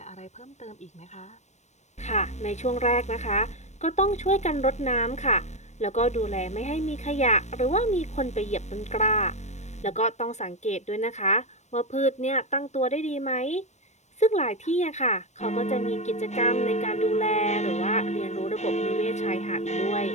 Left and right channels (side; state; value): right; late; 0.34 ms